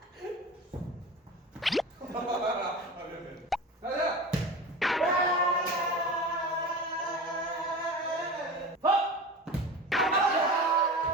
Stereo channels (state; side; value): normal; both; correlation 0.32